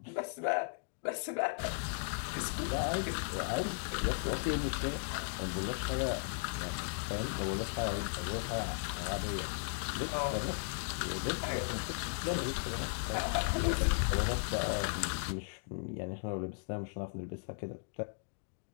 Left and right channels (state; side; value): silent; right; digital silence